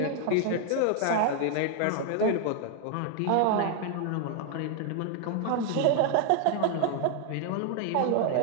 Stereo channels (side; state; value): both; different; correlation 0.00